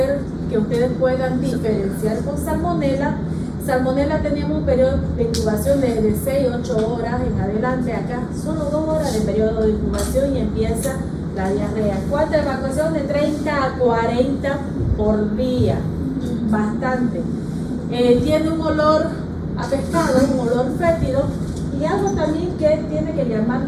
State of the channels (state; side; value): identical; both; correlation 1.00